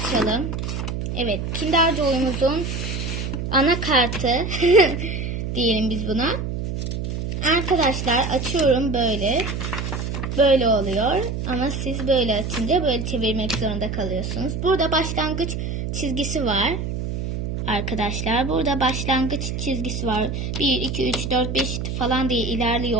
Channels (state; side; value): noise; right; hum, 3 dB below the sound